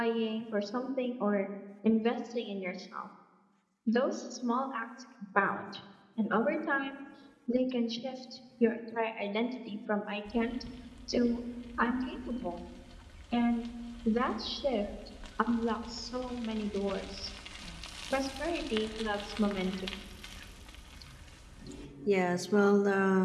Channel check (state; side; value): identical; both; correlation 1.00